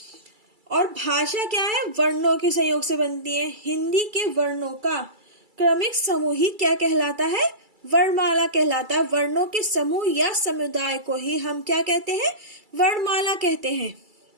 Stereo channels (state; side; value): late; left; 2.3 ms